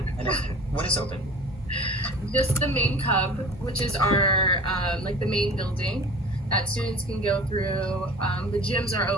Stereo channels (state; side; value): normal; both; correlation 0.41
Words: I know. What is open? Just the main cub, which is our, the main building that students can go through. The gyms are